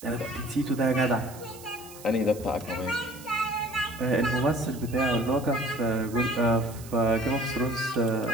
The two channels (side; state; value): right; noise; hiss, 18 dB below the sound